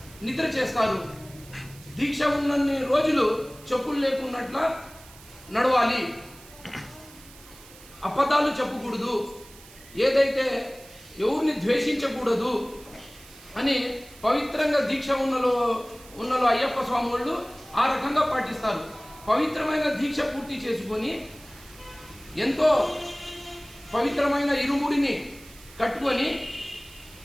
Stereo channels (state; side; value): noise; right; hiss, 21 dB below the sound